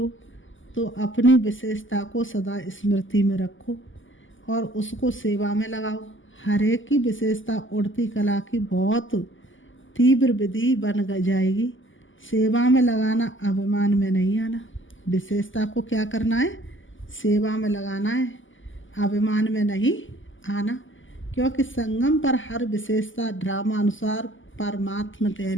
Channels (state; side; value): late; right; 0.57 ms